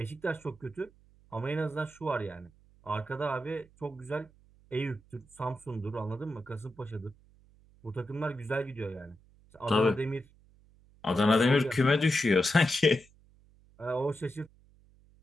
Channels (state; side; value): noise; right; hum, 28 dB below the sound